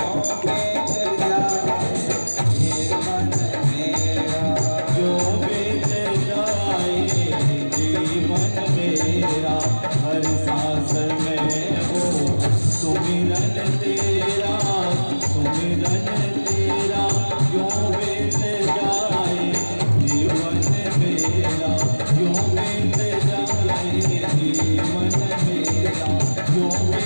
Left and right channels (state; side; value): inverted; both; correlation -1.00